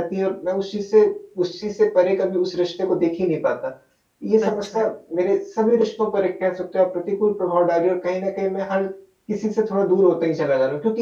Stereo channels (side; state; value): both; identical; correlation 1.00